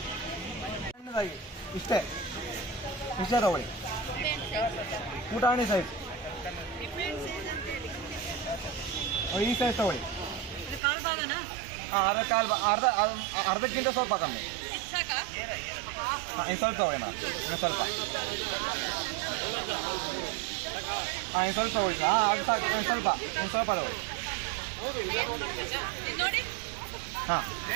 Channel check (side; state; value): left; drops out; at 10.8 s